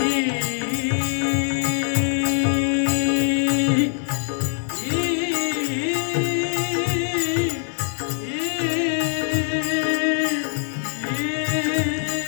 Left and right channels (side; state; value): right; silent; digital silence